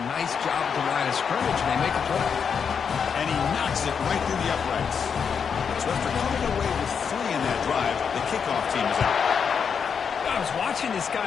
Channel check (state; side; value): quieter; right; 6.6 dB